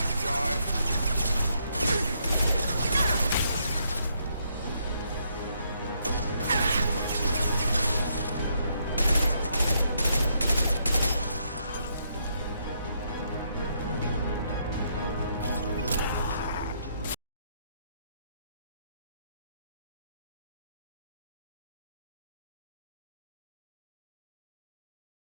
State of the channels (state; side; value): inverted; both; correlation -0.74